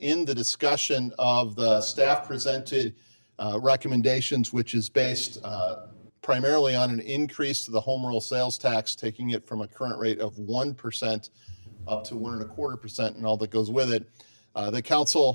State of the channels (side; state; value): both; inverted; correlation -1.00